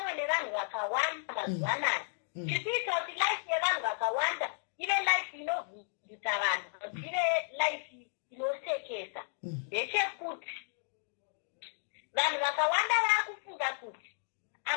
nevanhu vakawanda mazuva anaya. Chikuita kuti life yevanhu vakawanda ive life inovhundutsa vanhu, ive life inosekesa. Ndechekuti vanhu vakawanda vakufunga kuti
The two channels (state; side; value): silent; right; digital silence